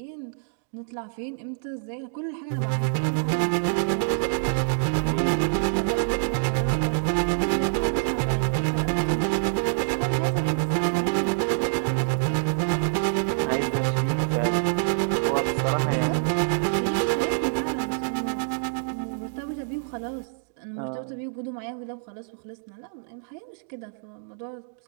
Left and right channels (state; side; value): silent; left; digital silence